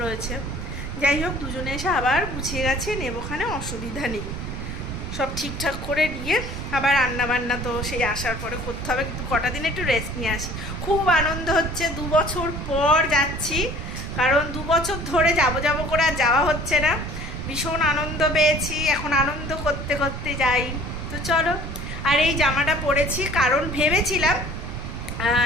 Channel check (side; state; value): right; noise; rumble, 6 dB below the sound